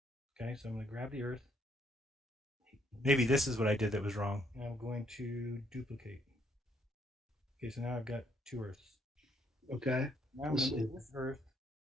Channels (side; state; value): both; normal; correlation 0.70